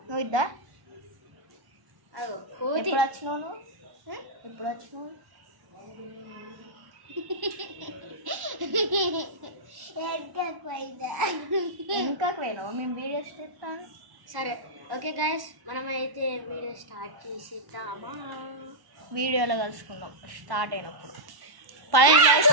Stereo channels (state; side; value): late; left; 1.1 ms